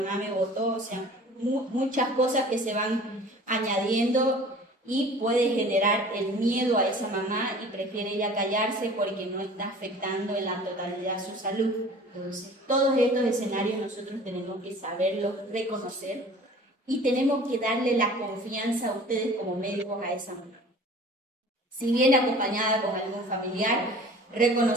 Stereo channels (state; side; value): normal; both; correlation 0.45